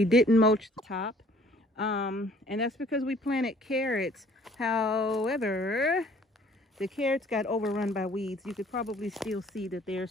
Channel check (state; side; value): normal; both; correlation 0.56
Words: didn't mulch the top, and that's because we planted carrots. However, the carrots got overrun by weeds. You could probably still see that there's